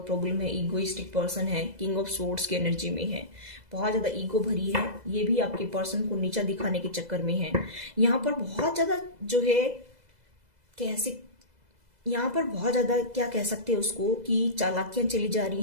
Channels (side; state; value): left; late; 2.0 ms